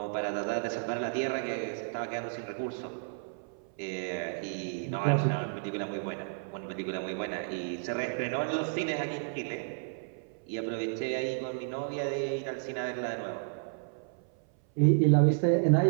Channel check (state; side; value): silent; left; 57 dB below the other